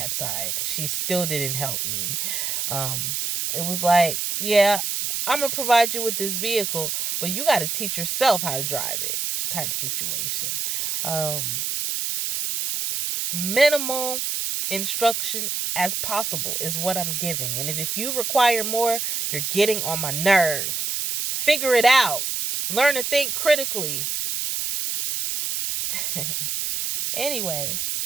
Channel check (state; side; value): noise; right; hiss, 1 dB below the sound